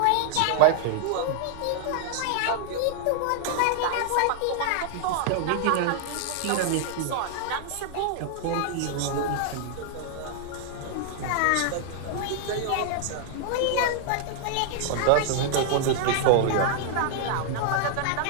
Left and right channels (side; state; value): both; different; correlation 0.00